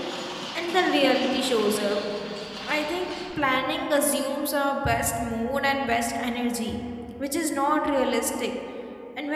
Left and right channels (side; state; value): both; identical; correlation 1.00